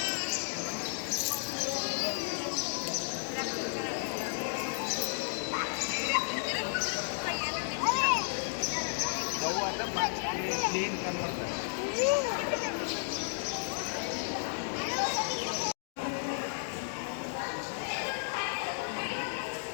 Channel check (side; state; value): right; silent; digital silence